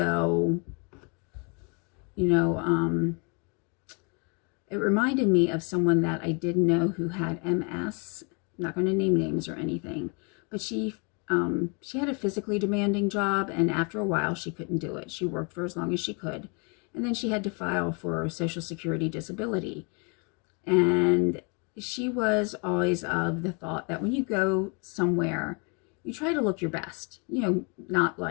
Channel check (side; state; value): right; quieter; 34.4 dB